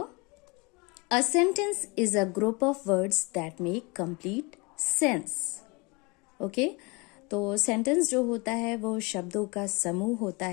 A sentence is a group of words that make complete sense. Okay? तो sentence जो होता है वो शब्दों का समूह होता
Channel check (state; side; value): quieter; right; 27.7 dB